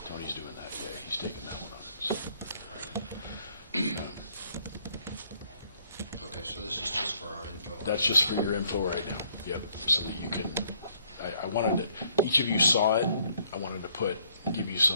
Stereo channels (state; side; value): inverted; both; correlation -0.65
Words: Tony's doing that. Yeah, he's taking that one on. So, Okay, so this is just for our info. that's just for your info right now. Yep. So that you can. I wanted to. Each of you saw it. I wanted to give you